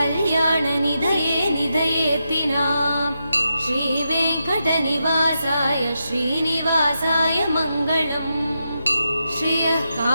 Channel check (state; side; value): inverted; both; correlation -0.86